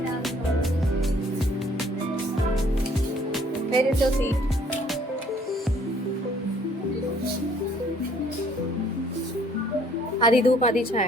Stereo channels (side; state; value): both; normal; correlation 0.60